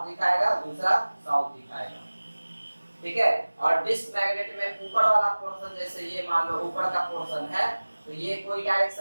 दिखाएगा, दूसरा साउथ दिखाएगा, ठीक है। और डिस्क मैग्नेट में ऊपर वाला पोर्शन, जैसे ये मान लो ऊपर का पोर्शन है, तो ये कोई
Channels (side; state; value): both; inverted; correlation -1.00